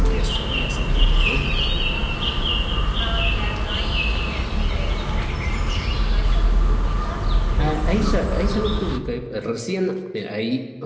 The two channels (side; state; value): both; identical; correlation 1.00